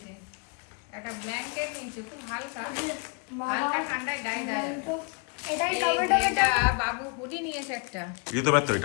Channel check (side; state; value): right; quieter; 34.8 dB